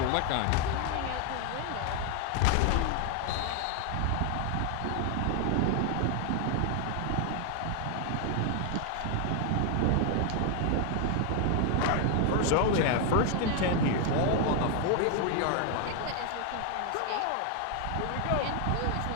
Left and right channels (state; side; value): different; both; correlation 0.00